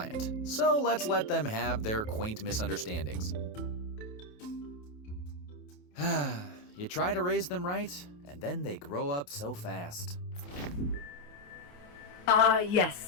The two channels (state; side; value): late; right; 28 ms